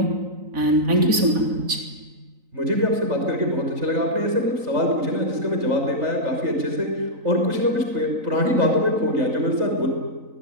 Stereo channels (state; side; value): late; left; 3.9 ms